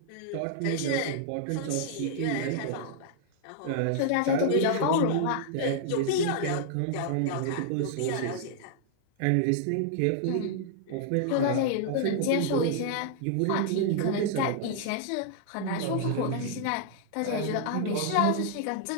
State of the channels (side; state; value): both; different; correlation -0.01